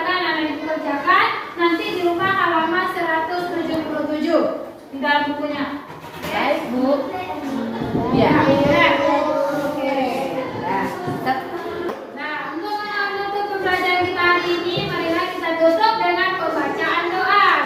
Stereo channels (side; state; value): both; identical; correlation 1.00